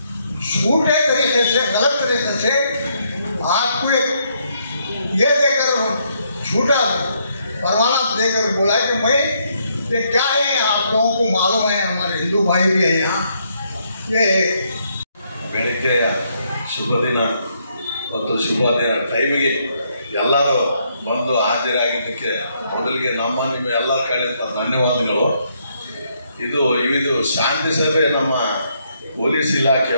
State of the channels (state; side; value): inverted; both; correlation -0.74